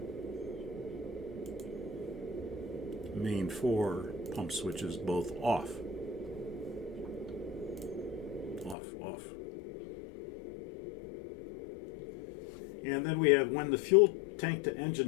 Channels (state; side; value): drops out; right; at 8.8 s